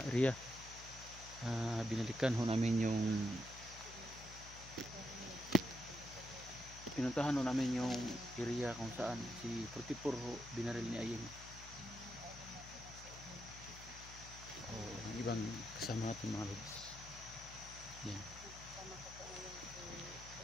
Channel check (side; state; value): left; noise; hum, 14 dB below the sound